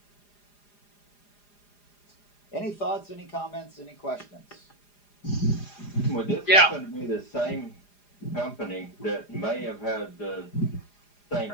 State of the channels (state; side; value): late; right; 4.9 ms